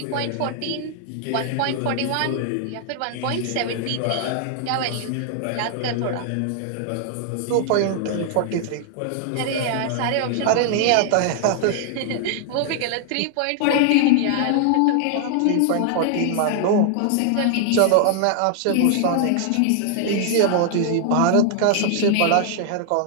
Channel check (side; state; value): both; different; correlation -0.01